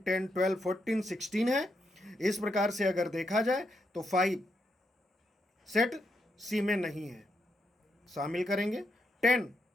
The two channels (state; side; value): normal; both; correlation 0.80